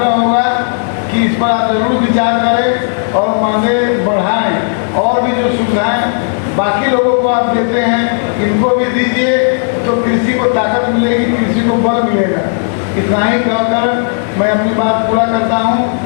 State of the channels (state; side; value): silent; right; digital silence